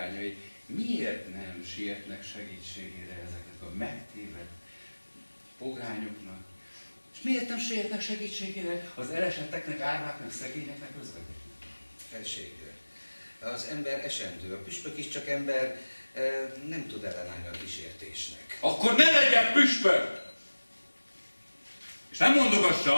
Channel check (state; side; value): inverted; both; correlation -1.00